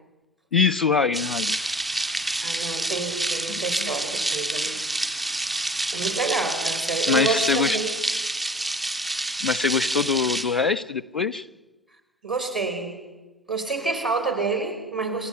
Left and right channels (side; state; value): both; normal; correlation 0.42